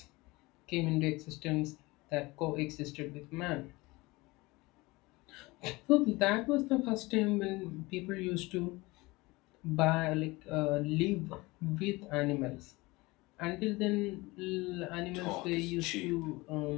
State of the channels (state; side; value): quieter; right; 22.4 dB